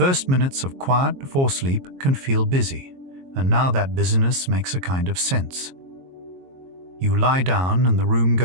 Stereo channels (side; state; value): left; late; 22 ms